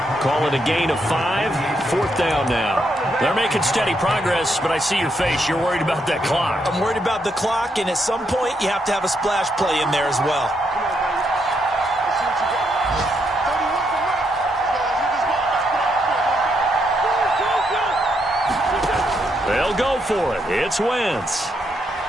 Call it a gain of 5, 4th down now. They're making steady progress, but I see your face. You're worried about that clock. I'm worried about the clock, and at some point, you have to have a splash play in there as well. They'll go for it. It's Wentz.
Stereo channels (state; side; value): normal; both; correlation 0.78